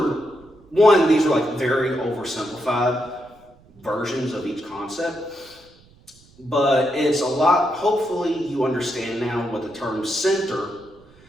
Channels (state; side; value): noise; right; rumble, 28 dB below the sound